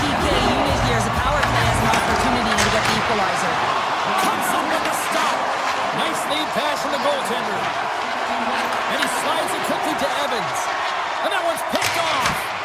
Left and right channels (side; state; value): both; identical; correlation 1.00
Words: PK unit here as the power play has an opportunity to get the equalizer. Comes up with the stop. Nice lead pass from the goaltender. And he slides it quickly to Evans. And that one's picked off.